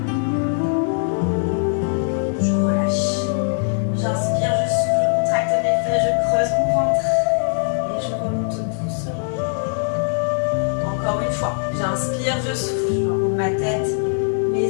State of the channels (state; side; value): silent; right; digital silence